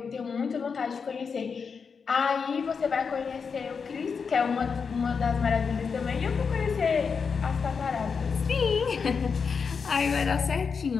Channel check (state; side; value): quieter; right; 5.7 dB